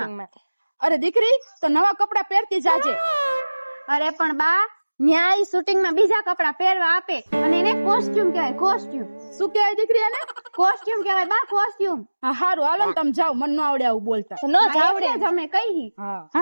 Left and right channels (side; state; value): both; inverted; correlation -1.00